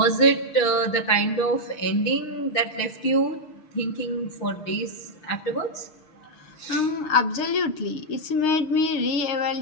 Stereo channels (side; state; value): right; late; 6.5 ms